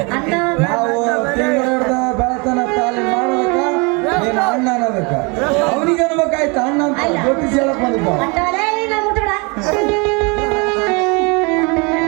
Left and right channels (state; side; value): quieter; left; 30.0 dB